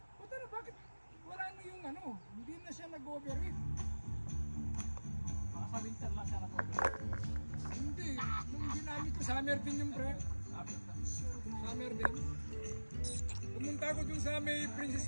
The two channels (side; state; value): both; inverted; correlation -1.00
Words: Puta na, bakit wala na yung ano, hindi na siya nag-overheat. Baka sa winter lang siya nag-overheat. Hindi, nung ginamit ko, summer din yung pre. Summer din. Pumunta ako dun sa may Princess